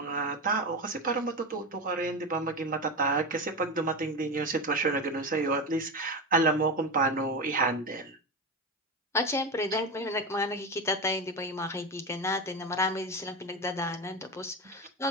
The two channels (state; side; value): normal; both; correlation 0.19